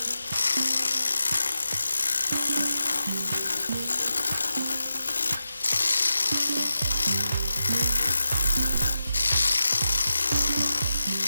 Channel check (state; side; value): inverted; both; correlation -0.90